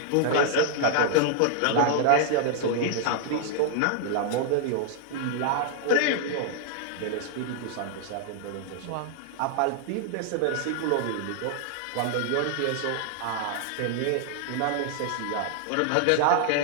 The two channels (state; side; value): different; both; correlation 0.00